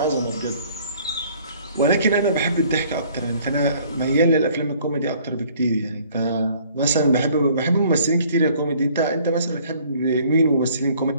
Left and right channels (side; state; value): both; inverted; correlation -0.57